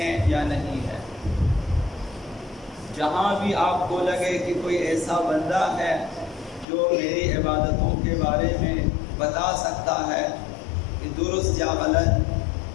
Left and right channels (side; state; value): right; drops out; at 6.7 s